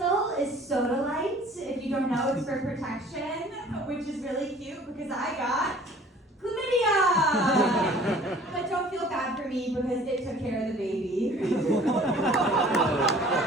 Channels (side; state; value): both; normal; correlation 0.51